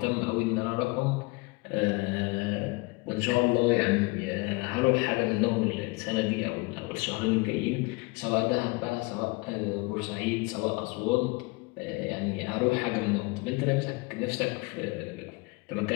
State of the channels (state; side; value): quieter; right; 25.6 dB